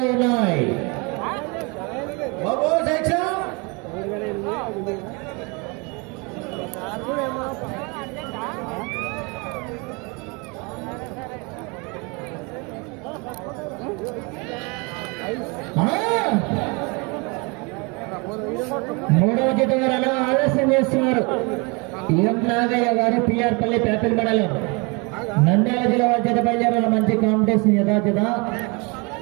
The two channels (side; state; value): left; quieter; 29.7 dB